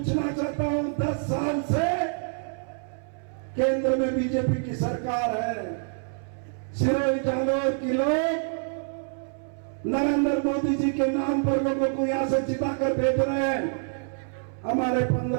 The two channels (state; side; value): silent; left; 60 dB below the other